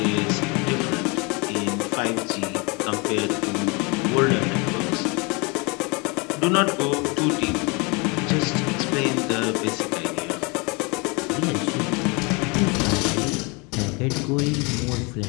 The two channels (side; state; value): right; quieter; 29.1 dB